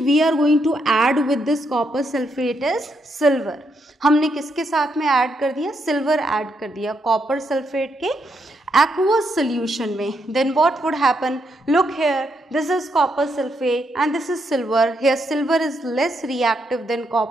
we are going to add with this copper sulphate is silver. हमने किसके साथ में ऐड कर दिया? सिल्वर ऐड कर दिया कॉपर सल्फेट के aqueous solution में। Then what would happen? Look here, this is copper sulfate and this is silver. Here silver is less reactive than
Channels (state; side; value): normal; both; correlation 0.78